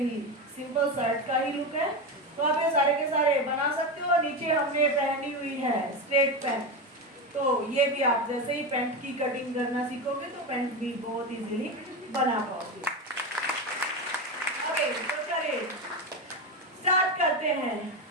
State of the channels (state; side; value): normal; both; correlation 0.17